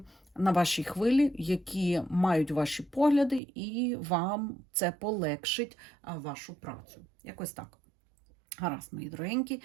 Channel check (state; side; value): drops out; left; at 3.4 s